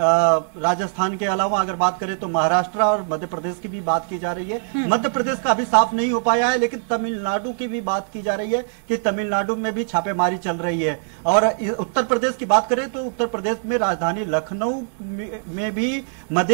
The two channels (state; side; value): silent; left; digital silence